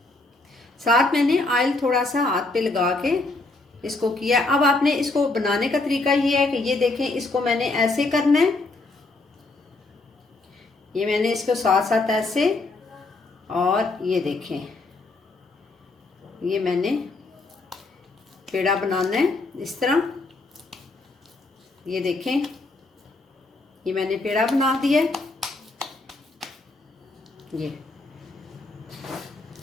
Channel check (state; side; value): quieter; right; 3.2 dB